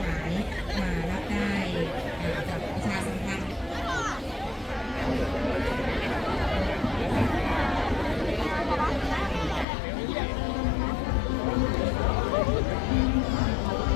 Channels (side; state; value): right; drops out; at 9.7 s